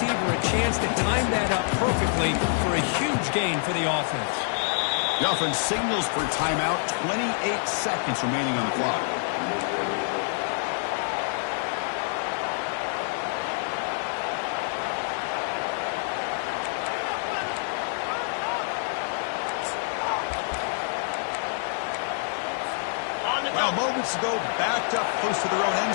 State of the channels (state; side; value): silent; right; 60 dB below the other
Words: a chance to time that up perfectly for a huge gain for the offense. The offense signals for timeout. 28 seconds remaining on the clock. Well, moments ago, backed up close to their own end